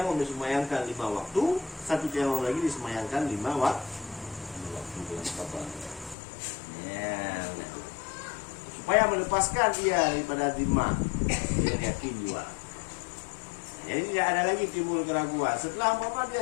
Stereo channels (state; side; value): drops out; right; at 6.2 s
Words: disemayangkan 5 waktu, satu tayamum lagi disemayangkan 5 waktu. Supaya melepaskan dia daripada zimah dengan yakin juga. Jadi tidak ada lagi timbul keraguan. Setelah umpama dia